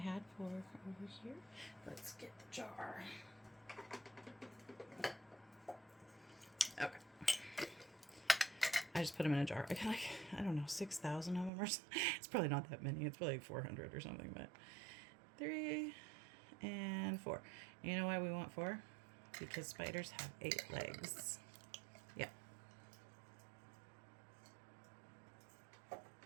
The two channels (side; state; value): left; drops out; at 11.5 s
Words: 4 over here. Let's get the jar. Okay. I just put them in a jar. I got, like, I don't know, 6,000 of them or something. It's probably not that many. It's probably like 400 or something, but 3 and 4. You know why we want 4? Because spiders have 8 legs. Yeah,